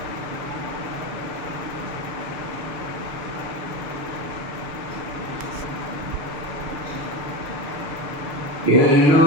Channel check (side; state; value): left; late; 6.7 ms